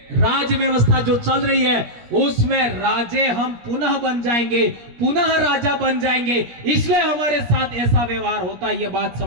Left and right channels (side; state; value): left; late; 17 ms